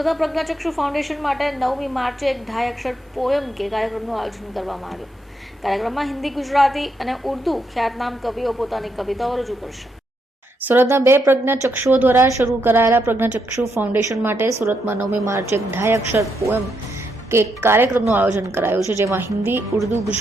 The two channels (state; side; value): normal; both; correlation 0.79